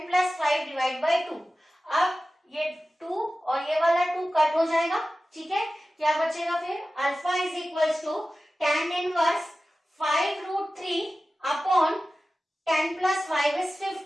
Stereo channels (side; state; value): both; normal; correlation 0.95